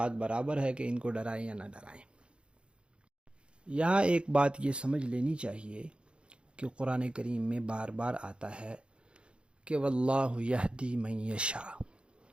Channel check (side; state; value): left; late; 0.056 ms